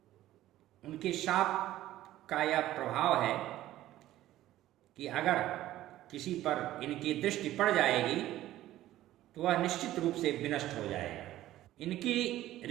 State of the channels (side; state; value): left; quieter; 14.4 dB